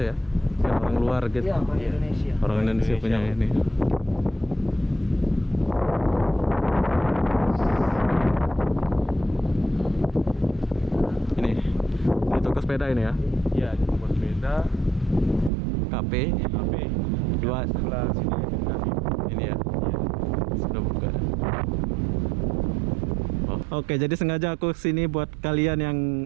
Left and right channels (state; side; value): drops out; left; at 15.5 s